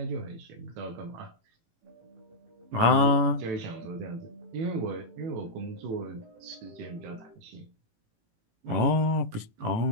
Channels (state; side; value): late; left; 18 ms